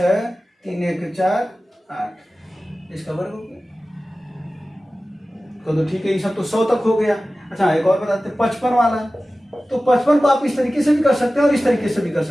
3 1 4 8 इसका वर्ग हो गया। तो ठीक है, ये सब तो 100 तक हो गया। अच्छा, एक और बताते हैं 55 वाला। तो 55 को आप इस तरीके से भी कर सकते हैं और इस तरीके से भी कर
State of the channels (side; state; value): both; normal; correlation 0.96